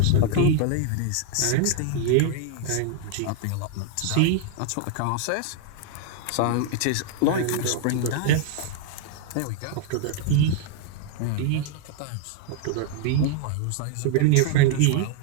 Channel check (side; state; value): both; different; correlation 0.00